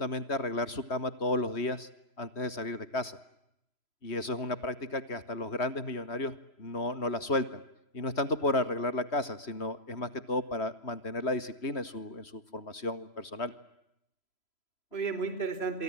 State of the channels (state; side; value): late; right; 3.0 ms